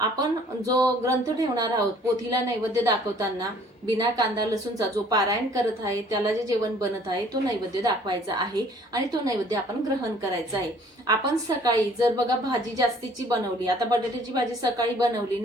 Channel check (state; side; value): normal; both; correlation 0.56